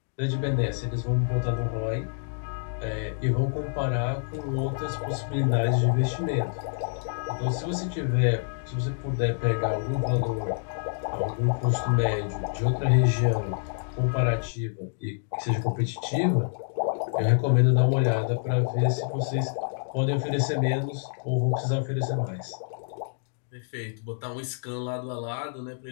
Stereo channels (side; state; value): right; silent; digital silence